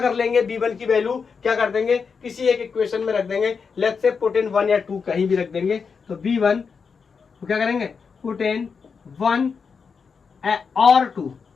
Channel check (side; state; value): right; quieter; 5.6 dB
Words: कर लेंगे B1 की वैल्यू, क्या कर देंगे, किसी एक इक्वेशन में रख देंगे, लेट्स से पुट इन 1 या 2 कहीं भी रख देंगे। तो B1 तो क्या करेंगे, पुट इन 1 और 2